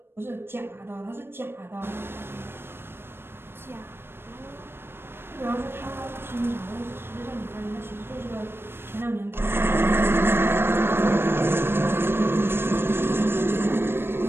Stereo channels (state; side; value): late; left; 0.11 ms